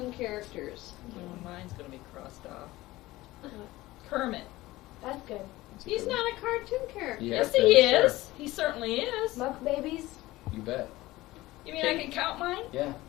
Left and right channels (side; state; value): right; quieter; 18.2 dB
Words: characters. Mine's gonna be crossed off. Kermit. That's good. He's not a cartoon character. Yeah, Yes, okay, he sure. is. He certainly is. Muck babies. You bet. You mean I can count mine? Yeah.